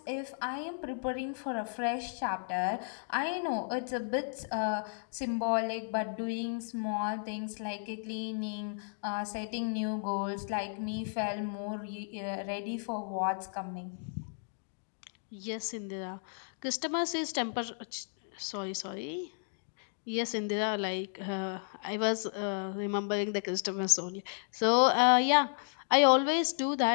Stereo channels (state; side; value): silent; right; digital silence